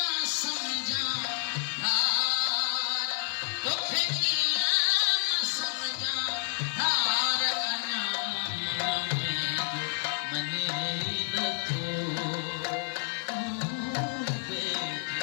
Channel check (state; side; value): silent; right; digital silence